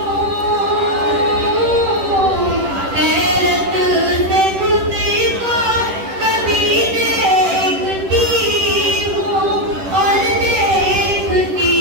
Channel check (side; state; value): left; late; 10 ms